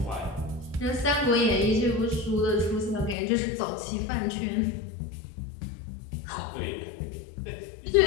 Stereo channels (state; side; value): drops out; right; at 3.2 s